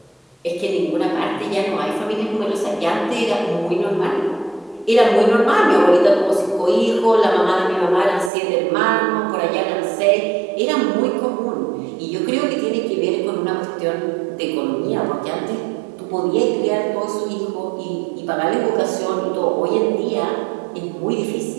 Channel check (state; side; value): drops out; left; at 8.3 s